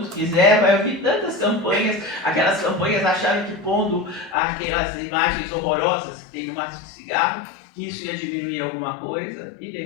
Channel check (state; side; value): drops out; right; at 4.4 s